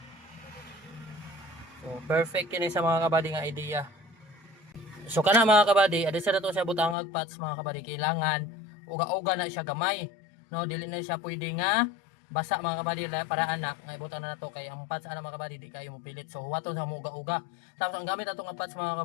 So perfect kini sa mga kabady nga idea. So kana mga kabady, adi sa nato siya butangag patch mga kabady, kailangan uga-uga na siya gamay. No, dili na siya pwede nga basa mga kabady para ana nga ibutan na nato kay ang patch ana mga kabady di kayo mopilit. So huwaton sa mo uga-uga. Tapos ang gamit nato nga patch mga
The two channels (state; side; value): drops out; right; at 7.0 s